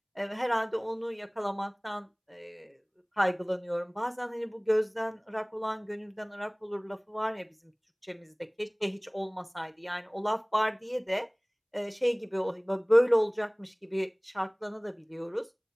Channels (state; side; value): identical; both; correlation 1.00